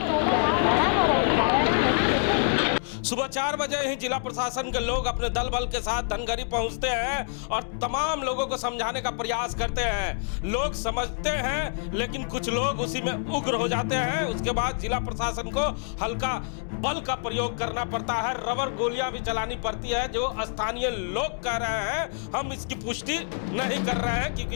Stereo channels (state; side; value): silent; right; digital silence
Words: सुबह 4 बजे ही जिला प्रशासन के लोग अपने दल बल के साथ धनगरी पहुंचते हैं और तमाम लोगों को समझाने का प्रयास करते हैं। लोग समझते हैं लेकिन कुछ लोग उसी में उग्र हो जाते हैं। उसके बाद जिला प्रशासन को हल्का बल का प्रयोग करना पड़ता है, रबर गोलियां भी चलानी पड़ती है, जो स्थानीय लोग कह रहे हैं। हम इसकी पुष्टि नहीं कर रहे हैं